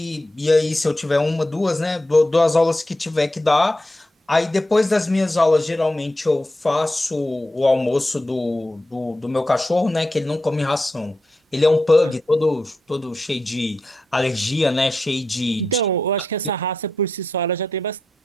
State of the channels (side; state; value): both; normal; correlation 0.87